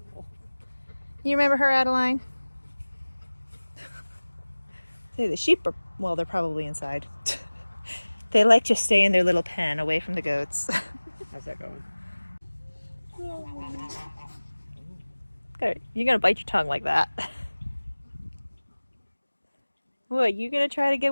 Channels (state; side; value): inverted; both; correlation -1.00